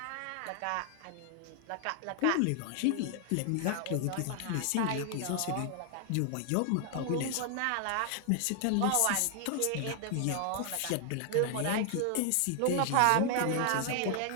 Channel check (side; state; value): both; different; correlation 0.00